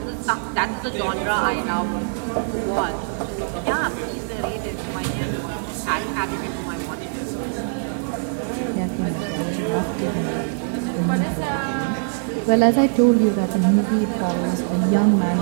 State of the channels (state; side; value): silent; left; digital silence